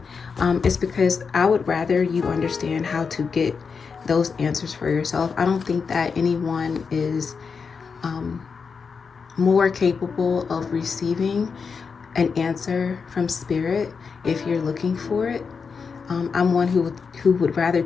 is because I would rather you understand how to get those answers for yourself. I don't think that anyone is more capable of receiving an answer from spirit if you're looking for it. I'm one who would rather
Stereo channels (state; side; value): quieter; right; 5.5 dB